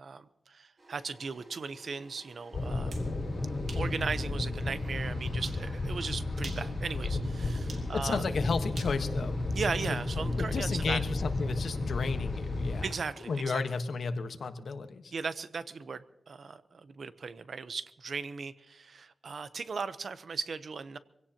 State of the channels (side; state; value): both; normal; correlation 0.88